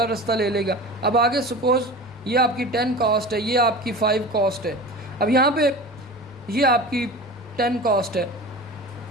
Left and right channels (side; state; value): left; noise; rumble, 28 dB below the sound